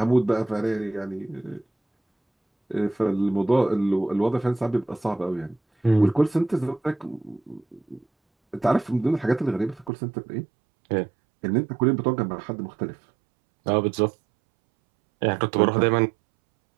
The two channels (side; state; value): left; drops out; at 9.9 s